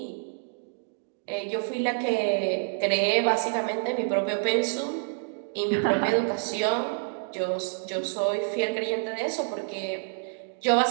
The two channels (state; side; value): silent; left; digital silence